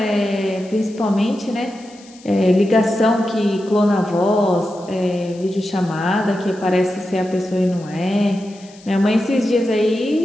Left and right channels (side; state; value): left; noise; hiss, 24 dB below the sound